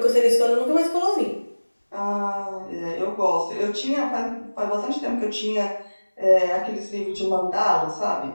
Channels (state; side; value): inverted; both; correlation -1.00